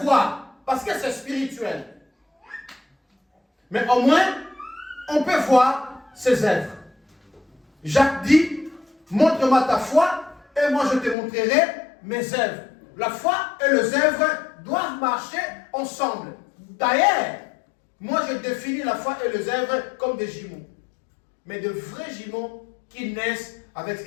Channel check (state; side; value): drops out; right; at 11.2 s